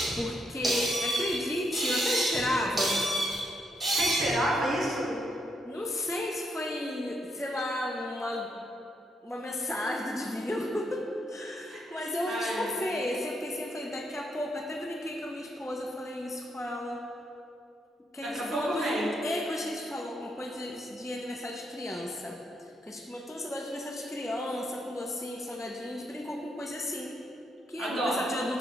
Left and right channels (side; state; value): both; normal; correlation 0.78